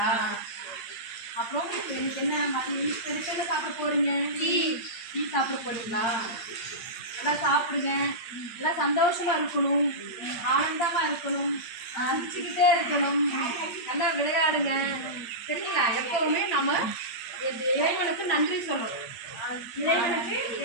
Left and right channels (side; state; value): right; late; 8.7 ms